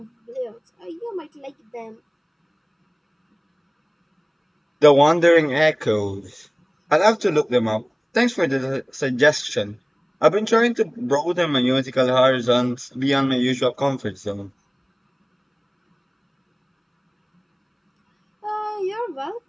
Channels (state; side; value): identical; both; correlation 1.00